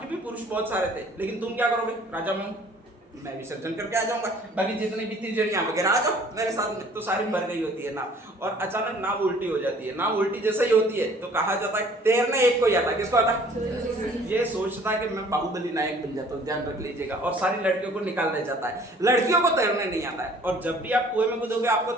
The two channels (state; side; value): normal; both; correlation 0.54